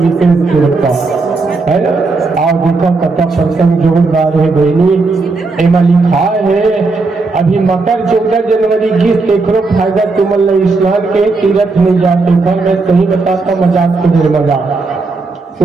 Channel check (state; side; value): quieter; left; 3.8 dB